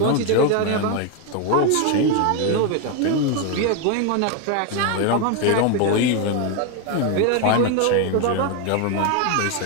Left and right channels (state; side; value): different; both; correlation 0.01